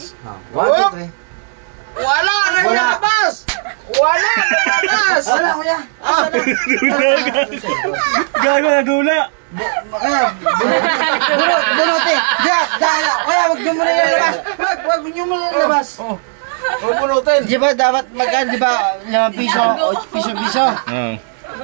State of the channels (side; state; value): left; silent; digital silence